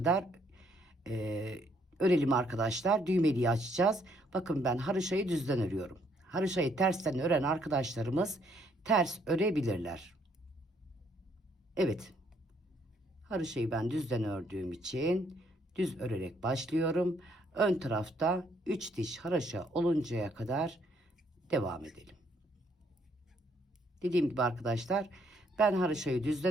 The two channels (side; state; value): both; normal; correlation 0.69